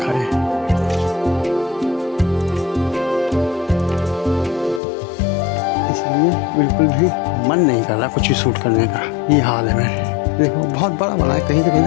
है। इसलिए बिल्कुल भी मन नहीं कर रहा कुछ भी शूट करने का, ये हाल है। मैं देखो बहुत बड़ा बना है, कहीं से कहीं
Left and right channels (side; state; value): right; drops out; at 4.8 s